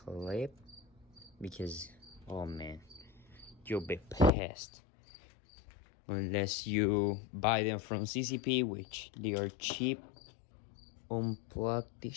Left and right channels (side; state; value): right; drops out; at 4.3 s